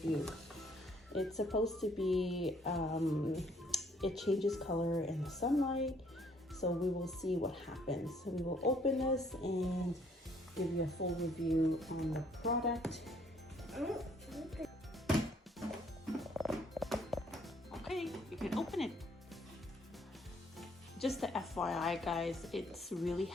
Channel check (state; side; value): normal; both; correlation 0.64